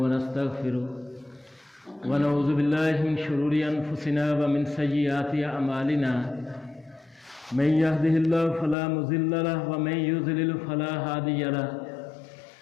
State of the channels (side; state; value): right; drops out; at 8.8 s